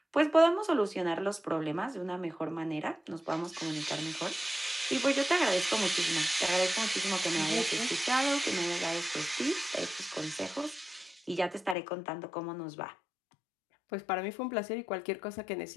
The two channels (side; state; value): right; drops out; at 11.8 s